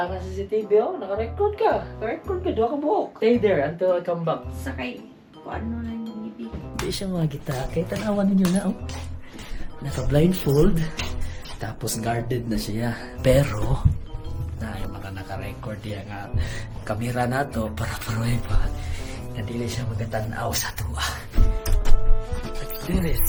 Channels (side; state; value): both; identical; correlation 1.00